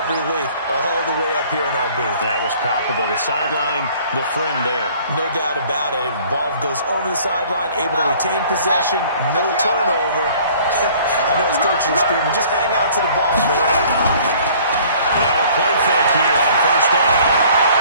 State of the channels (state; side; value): inverted; both; correlation -0.54